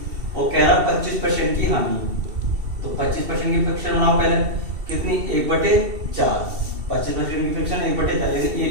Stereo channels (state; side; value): late; left; 2.7 ms